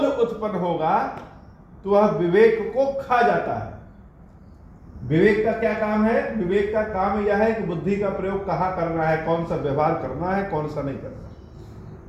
उत्पन्न होगा तो वह विवेक को खा जाता है। विवेक का क्या काम है? विवेक का काम यह है कि बुद्धि का प्रयोग कहां करना है, कौन सा व्यवहार करना है, कौन सा नहीं करना।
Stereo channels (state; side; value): identical; both; correlation 1.00